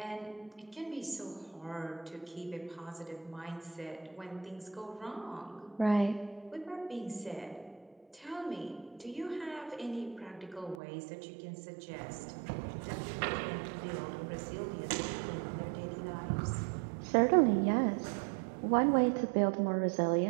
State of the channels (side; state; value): left; drops out; at 10.8 s